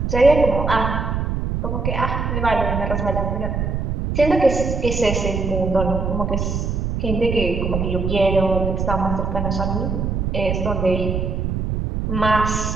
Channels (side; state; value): right; noise; rumble, 1 dB below the sound